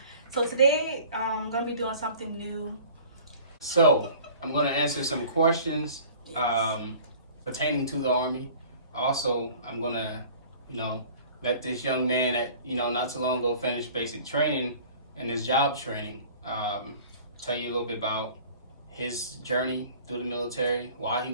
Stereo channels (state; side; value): inverted; both; correlation -0.47